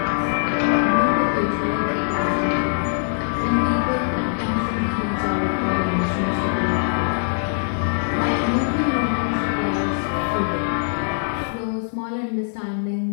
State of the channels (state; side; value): silent; right; digital silence